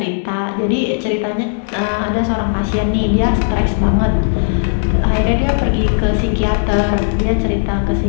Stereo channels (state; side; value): silent; right; digital silence